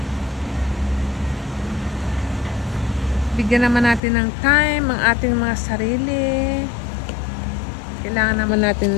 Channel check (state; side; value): drops out; right; at 4.0 s